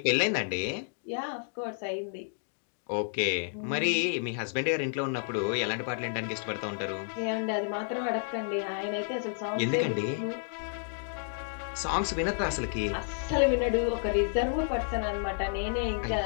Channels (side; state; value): right; silent; digital silence